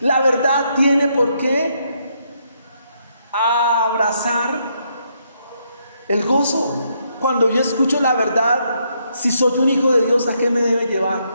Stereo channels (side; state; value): both; inverted; correlation -0.75